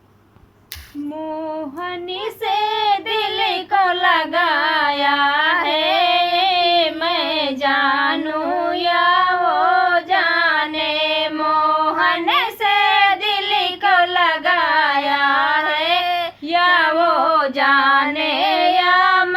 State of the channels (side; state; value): both; identical; correlation 1.00